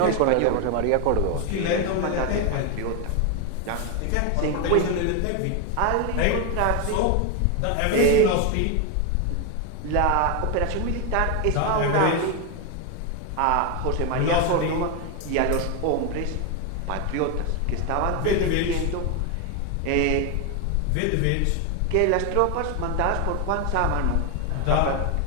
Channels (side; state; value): both; different; correlation 0.01